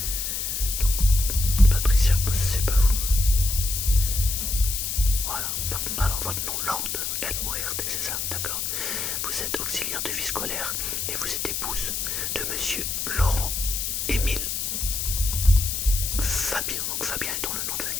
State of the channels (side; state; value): left; noise; hiss, 2 dB below the sound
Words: Donc, Patricia, c'est pas vous. Voilà. Alors votre nom, Lord, L-O-R-D, c'est ça, d'accord. Vous êtes auxiliaire de vie scolaire et vous êtes épouse de monsieur Laurent Émile Fabien. Donc Fabien est dans le nom de